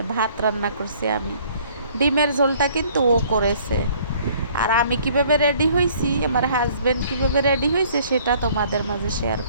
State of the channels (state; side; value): inverted; both; correlation -0.58